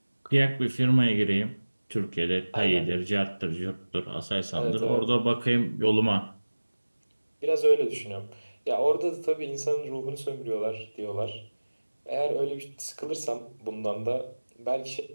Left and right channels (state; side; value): inverted; both; correlation -1.00